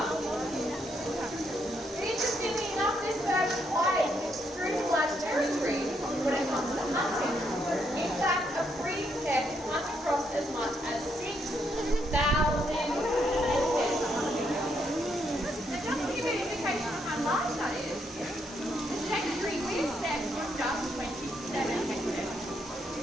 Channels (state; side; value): normal; both; correlation 0.76